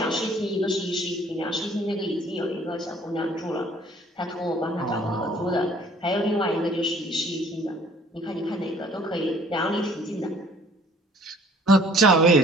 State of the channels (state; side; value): normal; both; correlation 0.56